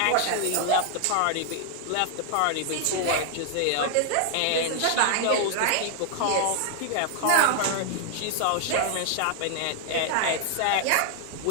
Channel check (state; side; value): different; both; correlation 0.00